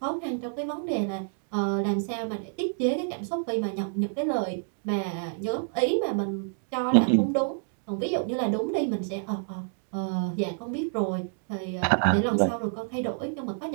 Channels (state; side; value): silent; left; digital silence